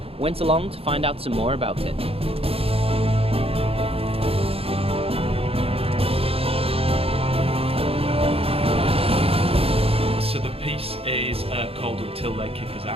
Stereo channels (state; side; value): late; left; 0.28 ms